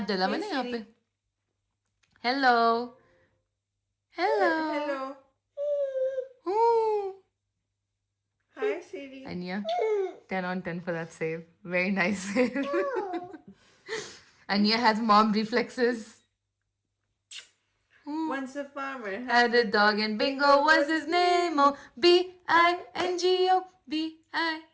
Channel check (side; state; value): both; identical; correlation 1.00